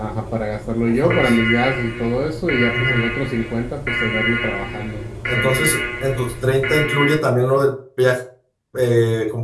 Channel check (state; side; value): identical; both; correlation 1.00